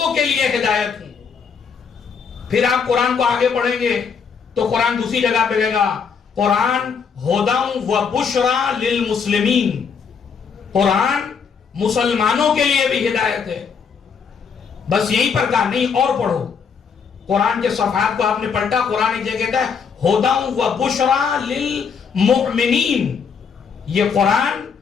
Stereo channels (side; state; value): right; quieter; 6.2 dB